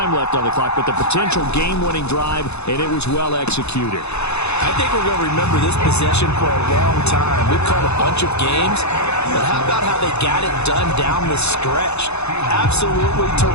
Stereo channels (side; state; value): right; late; 0.81 ms